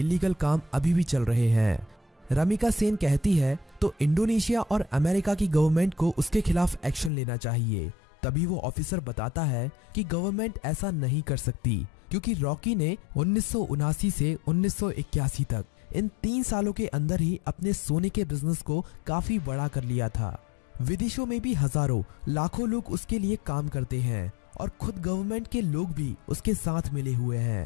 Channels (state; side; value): drops out; right; at 7.1 s